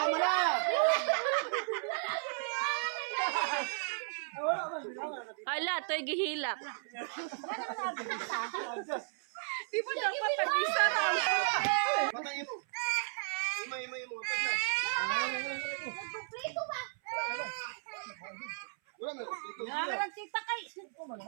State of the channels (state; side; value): silent; left; 55 dB below the other